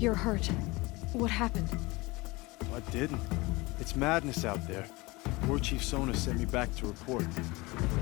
hurt. What happened? What didn't? It's madness out there. War Chief Sona sent me back to report.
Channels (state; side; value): quieter; right; 23.2 dB